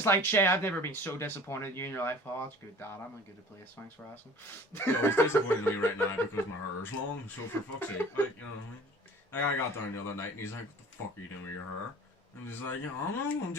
like, Shay, I've never been so disappointed in you in your life. Oh, that's good, Dad. I'm a good place. Thanks for asking. Yo, he's disappointed in me right now because my hair's long, so for fuck's sake, like, you know what I mean? Like, I got down the other night and he's like, what the fuck are you doing with your hair? And he's like, I don't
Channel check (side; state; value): both; normal; correlation 0.46